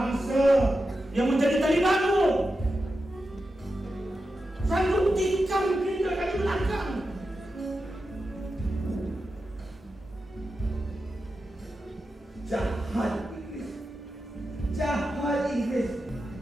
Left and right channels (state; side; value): normal; both; correlation 0.90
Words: yang menjadi Talibanu, sanggup tikam kita dari belakang. Jahat Inggris, jahat Inggris,